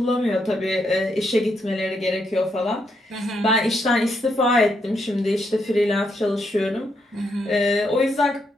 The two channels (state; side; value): normal; both; correlation 0.78